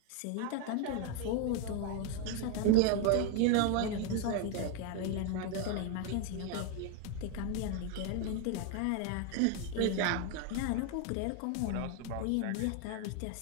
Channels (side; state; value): both; different; correlation 0.01